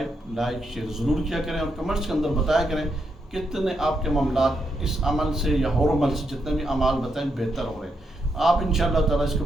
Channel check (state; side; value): normal; both; correlation 0.81